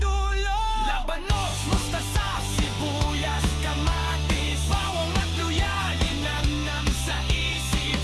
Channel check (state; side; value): identical; both; correlation 1.00